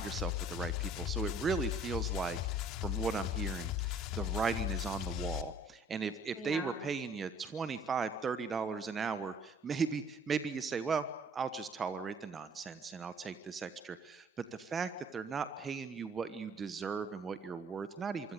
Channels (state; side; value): normal; both; correlation 0.55